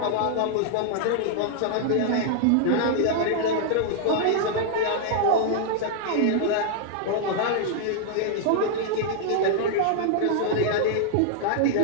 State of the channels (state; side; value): different; both; correlation -0.01